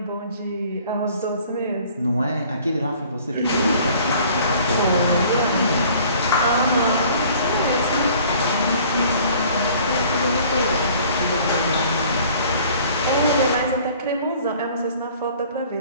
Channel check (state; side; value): inverted; both; correlation -0.53